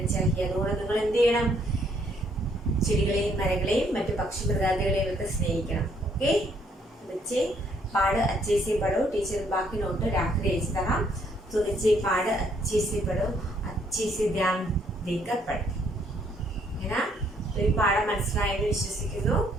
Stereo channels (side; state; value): both; normal; correlation 0.68